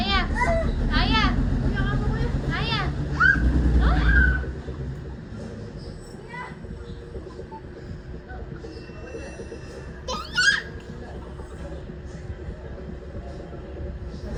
Aya! Aya! Oh!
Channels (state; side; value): identical; both; correlation 1.00